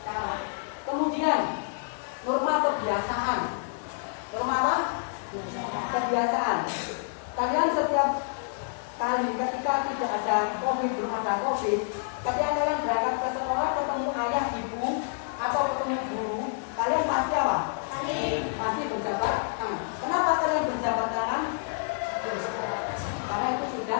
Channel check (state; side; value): silent; right; digital silence